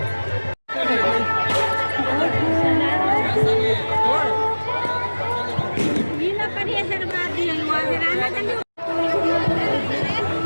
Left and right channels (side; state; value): both; inverted; correlation -1.00